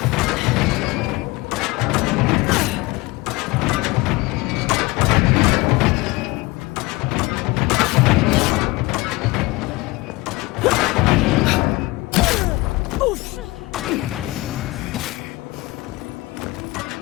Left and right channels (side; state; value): right; quieter; 22.0 dB